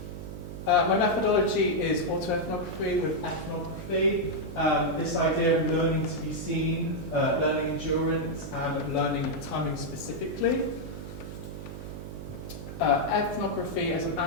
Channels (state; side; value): noise; right; hum, 9 dB below the sound